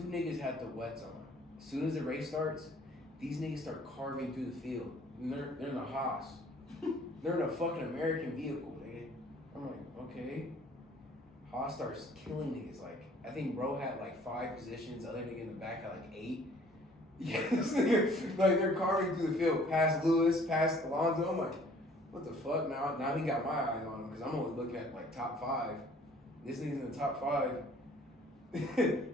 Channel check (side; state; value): both; normal; correlation 0.56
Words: niggas had the wets on. As soon as the race starts, these niggas start carving through the field. And they're in a Haas. They're in a fucking American vehicle, nigga. I'm like, okay. Haas starts killing niggas. Like, I think bro had like 5 positions. Other nigga in the back had like 8. Yeah, this nigga, like they're carving through the field, past Lewis, past Alonso. I'm like, what the fuck? Now he got my eyes on him because I'm only looking at like top 5. This nigga's in the top 5.